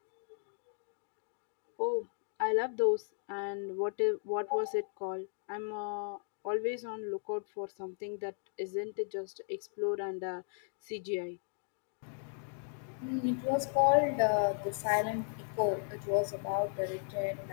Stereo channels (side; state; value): right; silent; digital silence